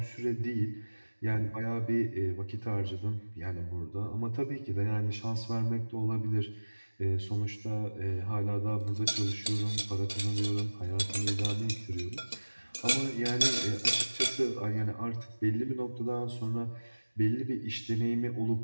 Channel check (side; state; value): both; inverted; correlation -1.00